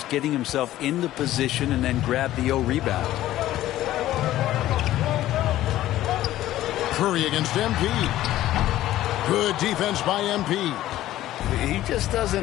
getting himself into position and then grab the rebound. Curry against MP. Good defense by MP. He just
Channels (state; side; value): quieter; right; 14.2 dB